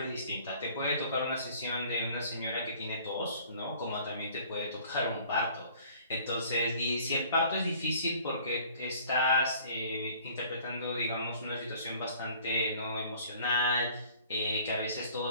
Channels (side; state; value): both; inverted; correlation -0.53